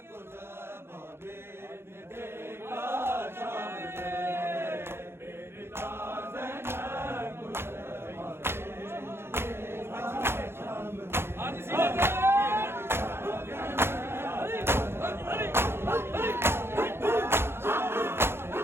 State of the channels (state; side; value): late; left; 0.12 ms